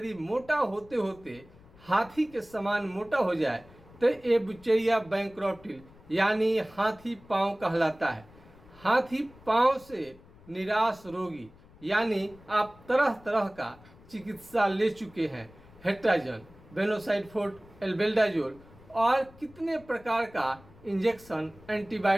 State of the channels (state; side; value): noise; left; rumble, 24 dB below the sound